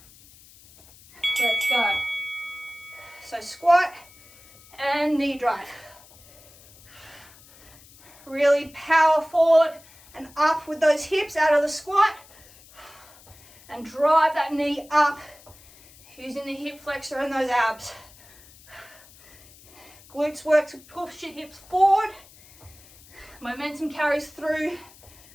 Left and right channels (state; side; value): noise; left; hiss, 24 dB below the sound